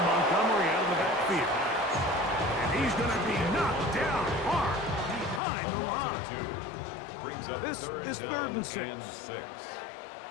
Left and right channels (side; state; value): right; drops out; at 5.4 s